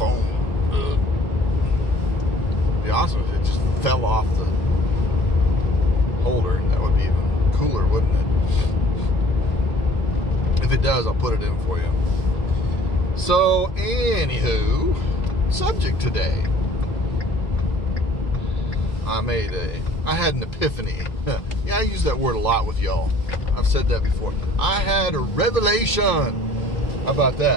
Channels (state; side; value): late; right; 2.3 ms